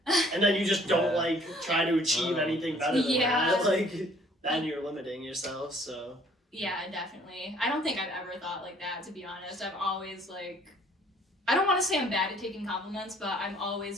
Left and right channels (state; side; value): normal; both; correlation 0.58